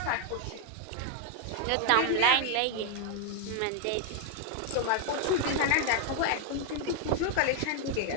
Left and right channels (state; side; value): different; both; correlation 0.00